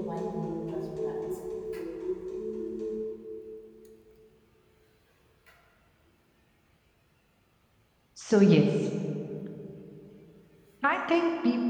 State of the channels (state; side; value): identical; both; correlation 1.00